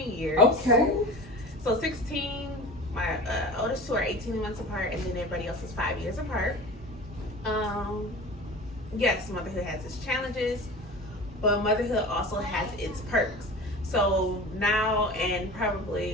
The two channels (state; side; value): normal; both; correlation 0.35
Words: years. Okay. So 16. My oldest 2 are 18 months apart, and then everybody else is 5 years apart. Yes, motherhood has its challenges, but motherhood also has its perks. So now, and